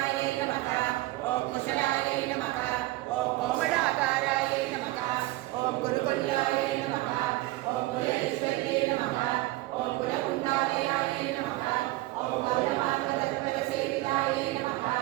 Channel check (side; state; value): left; quieter; 18.6 dB